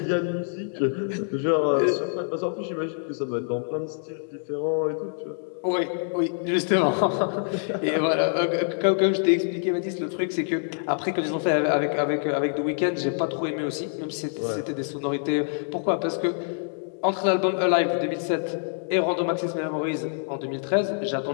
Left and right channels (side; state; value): right; silent; digital silence